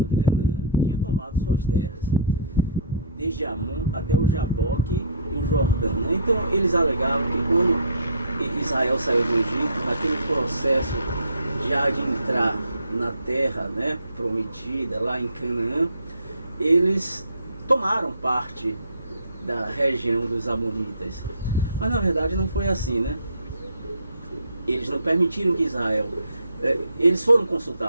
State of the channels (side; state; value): both; inverted; correlation -0.53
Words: de Canaã, tinha tomado suas terras, desde Amon até o Jaboque e o Jordão, né? Então eles alegavam que quando Israel saiu do Egito, naquele processo já de entrar na terra, né, prometida, lá em Canaã, eles tomaram parte da região dos amonitas. Mas na verdade não foi assim, né? Eles não permitiram que Israel... eles foram